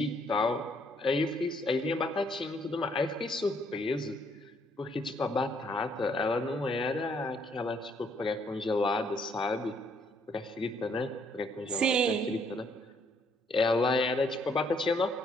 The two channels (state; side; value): normal; both; correlation 0.68